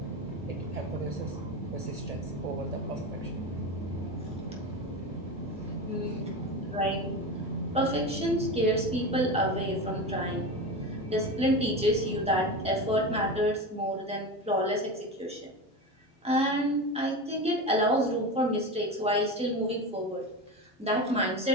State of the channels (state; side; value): normal; both; correlation 0.24